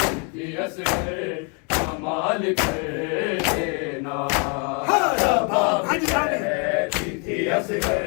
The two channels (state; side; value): quieter; right; 35.8 dB